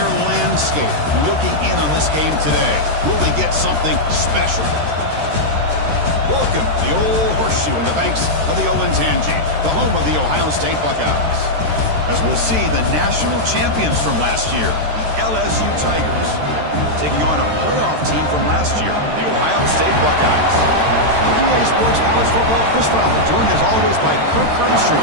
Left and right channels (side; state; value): left; late; 13 ms